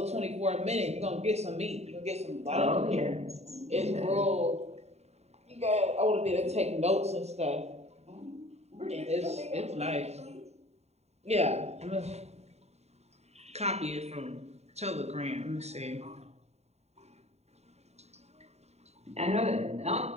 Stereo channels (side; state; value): left; late; 0.31 ms